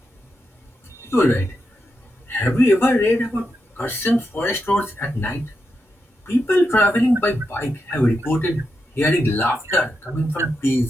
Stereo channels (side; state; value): both; normal; correlation 0.86